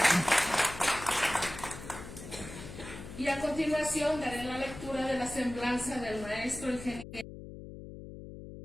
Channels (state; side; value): noise; left; hum, 12 dB below the sound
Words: Y a continuación daré la lectura de la semblanza del maestro ingeniero.